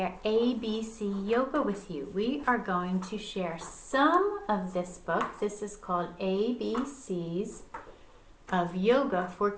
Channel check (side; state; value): both; identical; correlation 1.00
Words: ABC Yoga with you. We are going to share some of this book. This is called ABCs of Yoga for